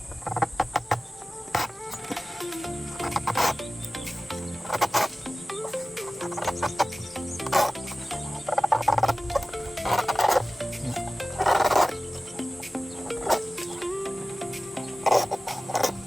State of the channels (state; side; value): normal; both; correlation 0.97